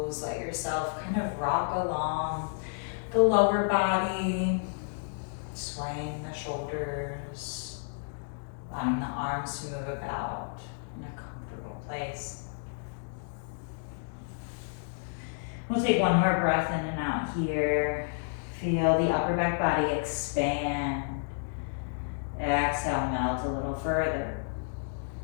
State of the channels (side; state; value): right; silent; digital silence